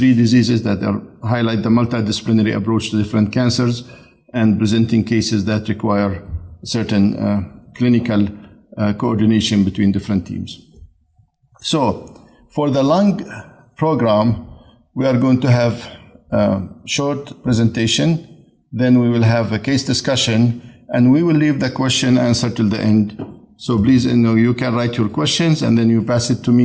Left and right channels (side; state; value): both; identical; correlation 1.00